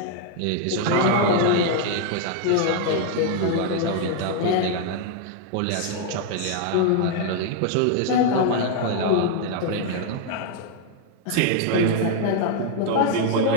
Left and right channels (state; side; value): different; both; correlation 0.00